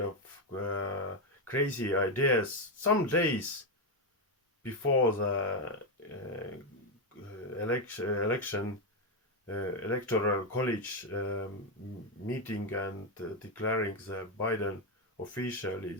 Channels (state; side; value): normal; both; correlation 0.06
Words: of crazy ideas some days before the election electoral college meeting and declaring the Biden officially